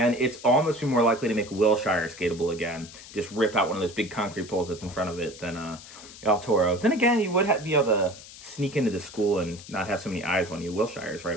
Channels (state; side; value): noise; left; hiss, 17 dB below the sound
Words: It's almost be more likely to make Wilshire skatable again. Just rip out one of those big concrete poles that's in front of it than El Toro. Then again, you would be able to sneak into the school and not have so many eyes on you. Wilshire's right